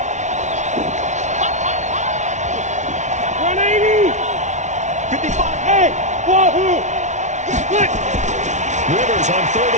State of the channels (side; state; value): left; late; 0.34 ms